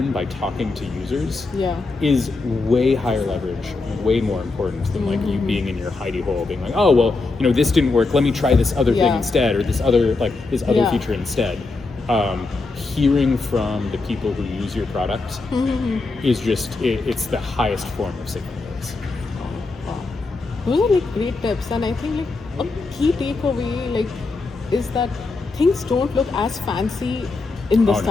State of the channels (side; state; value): right; quieter; 3.7 dB